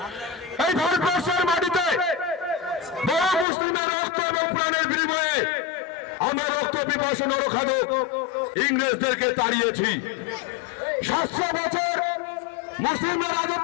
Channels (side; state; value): right; drops out; at 3.5 s